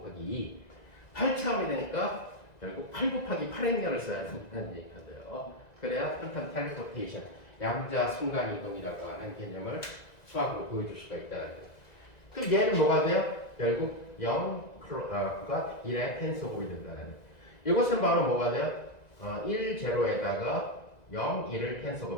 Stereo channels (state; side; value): late; right; 1.9 ms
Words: 2. 8차원이 되니까 결국 8 곱하기 8행렬을 써야 된다는 얘기가 돼요. 그래야 퀀텀 텔레포테이션, 양자 순간이동이라고 하는 개념을 수학으로 보여줄 수가 있다는 거예요. 그럼 얘는 뭐가 돼요? 결국 0가 1의 텐서곱이 된다는 거예요. 이것은 바로 뭐가 돼요? 1, 0에다가 0, 1을